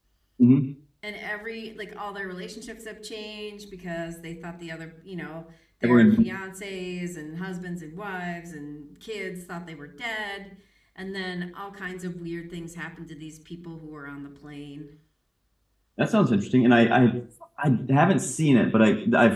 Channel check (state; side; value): identical; both; correlation 1.00